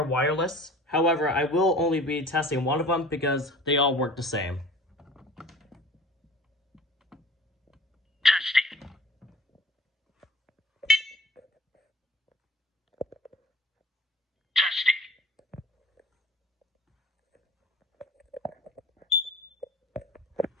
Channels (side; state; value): both; normal; correlation 0.45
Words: wireless. However, I will only be testing one of them because they all work the same. Testing.